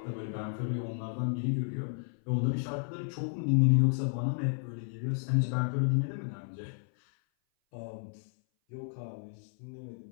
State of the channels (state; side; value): silent; right; 56 dB below the other